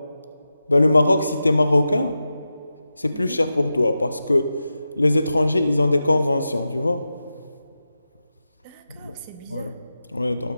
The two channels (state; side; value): inverted; both; correlation -0.92